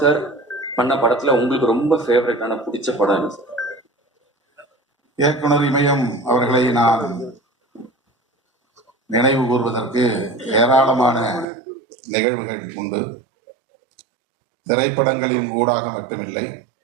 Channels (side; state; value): left; drops out; at 11.5 s